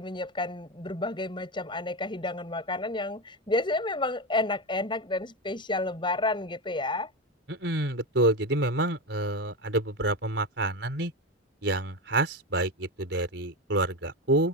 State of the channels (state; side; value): normal; both; correlation 0.16